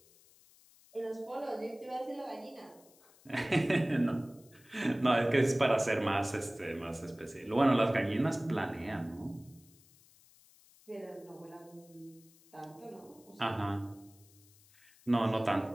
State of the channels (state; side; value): noise; left; hiss, 27 dB below the sound